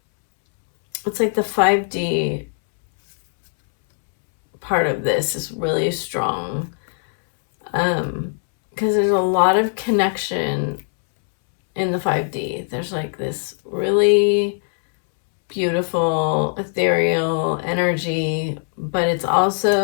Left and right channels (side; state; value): right; silent; 65 dB below the other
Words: It's like the 5D part of this is really strong. Because there's a lot of connection in the 5D. There's like this really beautiful, ethereal energy, but it's